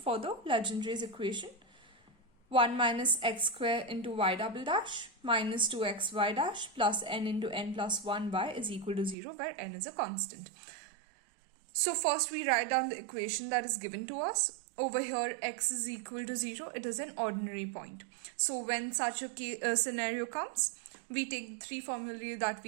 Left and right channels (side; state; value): left; drops out; at 9.2 s